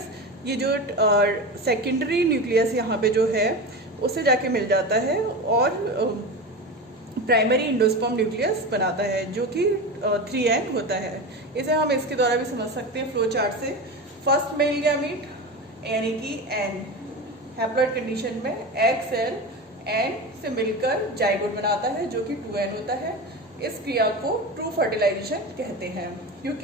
ये जो सेकेंडरी न्यूक्लियस यहाँ पे जो है उससे जाके मिल जाता है और प्राइमरी इंडोस्पर्म न्यूक्लियस बनाता है जो कि 3N होता है। इसे हम इसके द्वारा भी समझ सकते हैं फ्लो चार्ट से। फर्स्ट मेल गैमीट यानी कि N हैप्लॉइड कंडीशन में एग सेल N से मिलकर जाइगोट बनाता है जो कि 2N होता है। इस क्रिया को ट्रू फर्टिलाइजेशन कहते हैं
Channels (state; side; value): normal; both; correlation 0.25